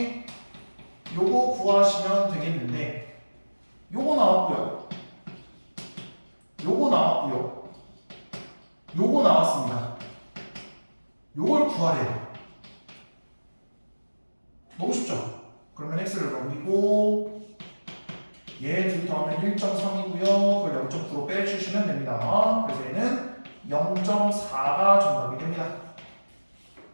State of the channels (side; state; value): both; inverted; correlation -1.00